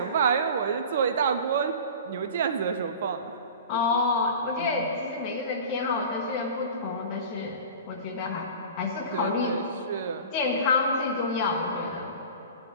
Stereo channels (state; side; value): inverted; both; correlation -0.37